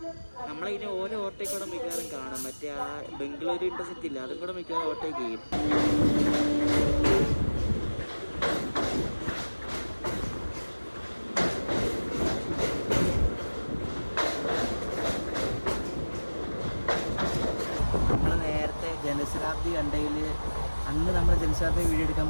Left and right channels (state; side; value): inverted; both; correlation -1.00